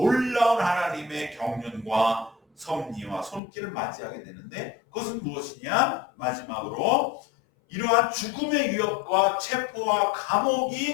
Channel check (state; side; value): drops out; right; at 3.4 s